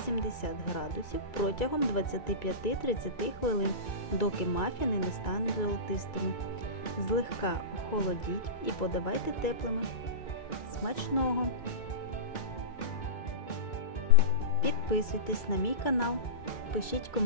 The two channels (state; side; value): late; right; 2.3 ms